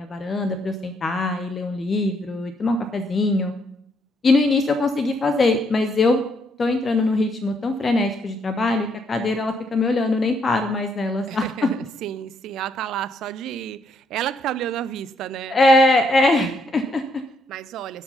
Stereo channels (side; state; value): both; normal; correlation 0.73